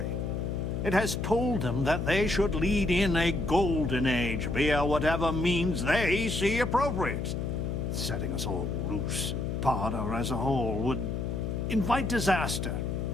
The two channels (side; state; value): left; noise; hum, 2 dB below the sound